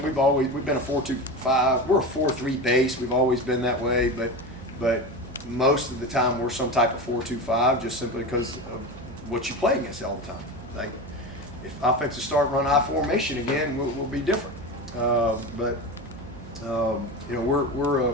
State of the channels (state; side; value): noise; right; hum, 17 dB below the sound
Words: We've been a 4-2-5. We're a 4-3 base. We've always been that way, but most of the time we're some type of 4-2-5 just simply because of what you play against all the time. Like, if offensive start run I formation again, we'll be different. You know, we're